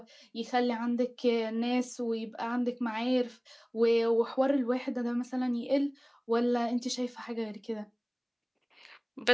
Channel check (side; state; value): both; identical; correlation 1.00